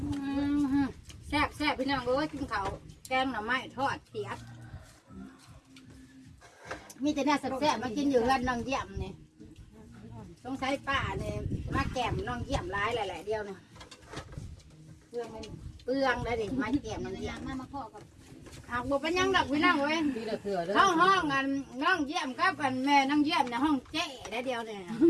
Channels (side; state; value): both; identical; correlation 1.00